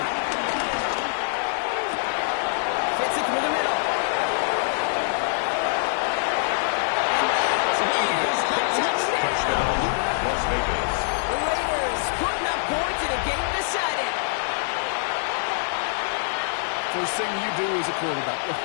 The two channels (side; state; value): right; silent; 62 dB below the other